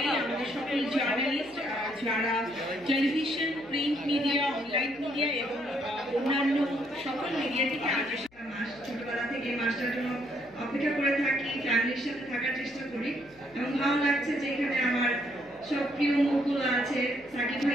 আমাদের সকল জার্নালিস্ট যারা television, print media, online media এবং অন্যান্য সকল মিডিয়া থেকে আগে মাস ছোটবেলা থেকে মাসটার জন্য অপেক্ষা করে থাকি, ফ্যামিলির সাথে থাকার চেষ্টা করি এবং ভালো লাগছে যে এখানে আমার সব প্রিয় মুখগুলো আছে, সাকিব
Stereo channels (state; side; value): noise; left; hum, 29 dB below the sound